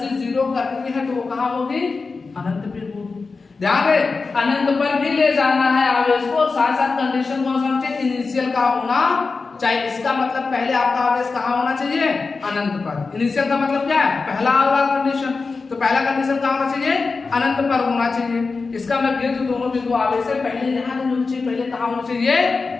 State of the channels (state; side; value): quieter; right; 4.3 dB